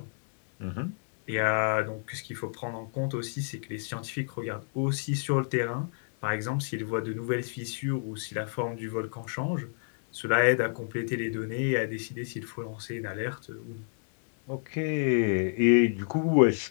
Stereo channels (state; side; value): silent; right; 58 dB below the other